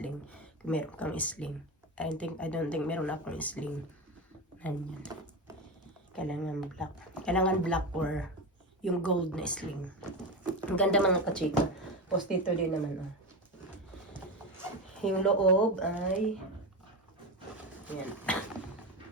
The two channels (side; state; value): both; normal; correlation 0.19